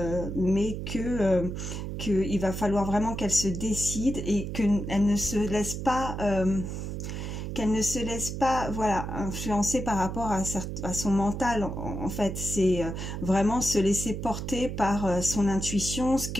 mais qu'il va falloir vraiment qu'elle se décide et qu'elle ne se laisse pas... voilà, influencer par rapport à son mental. En fait, c'est vraiment se laisser porter par son intuition, ce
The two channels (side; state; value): right; noise; hum, 5 dB below the sound